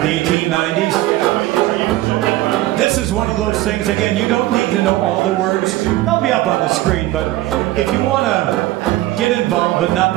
the 1890s. This is one of those things, again, you don't need to know all the words. They'll be up on the screen, but if you want to get involved but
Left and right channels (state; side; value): quieter; left; 16.7 dB